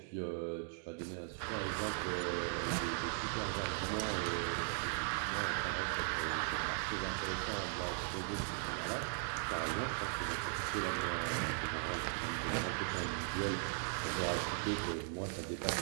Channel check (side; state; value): left; silent; 52 dB below the other